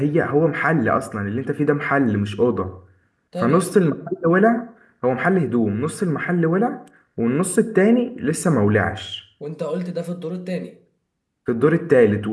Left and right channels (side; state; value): both; identical; correlation 1.00